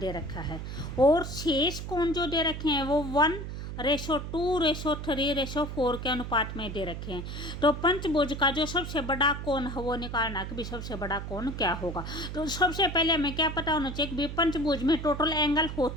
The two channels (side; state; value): right; noise; hum, 7 dB below the sound